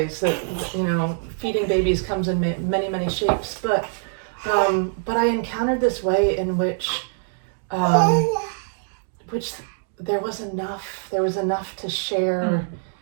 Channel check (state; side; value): silent; left; 63 dB below the other